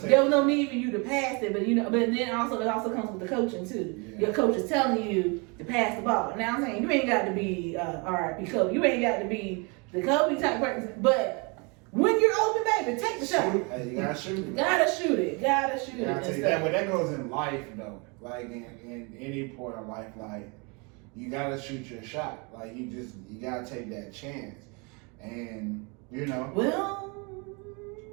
was no need for you to pass it. But, but then it also comes with the coaching, too. Yeah. Your coach is telling you to pass the ball. Now, I'm saying, you ain't got to be RIP Kobe. You ain't got to be the Kobe type person. But when you're open, baby, take the shot. Hey, you got to shoot it. Gotta shoot it. But that goes in life, though. Like in any point of life, like you gotta shoot your shot. Like you gotta take that chance. and you know. Well,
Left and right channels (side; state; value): left; quieter; 31.3 dB